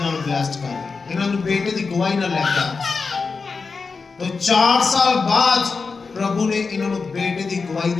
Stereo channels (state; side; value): quieter; right; 4.6 dB